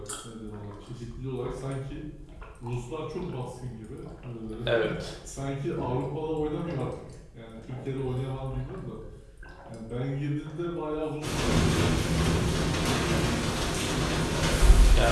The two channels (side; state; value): both; identical; correlation 1.00